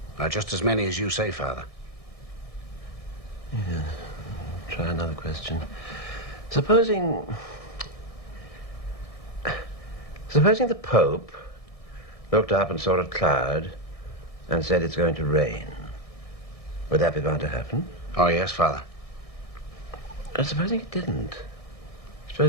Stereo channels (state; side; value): late; right; 1.6 ms